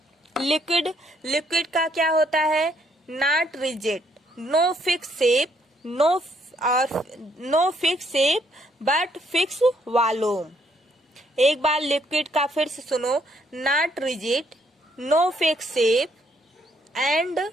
लिक्विड का क्या होता है, not rigid, no fix shape, no fix shape but fix volume. एक बार लिक्विड का फिर से सुनो, not rigid, no fix shape and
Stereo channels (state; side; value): normal; both; correlation 0.70